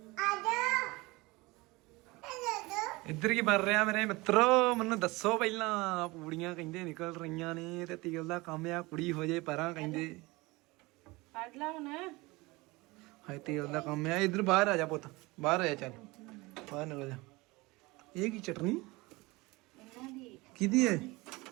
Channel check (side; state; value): left; quieter; 22.8 dB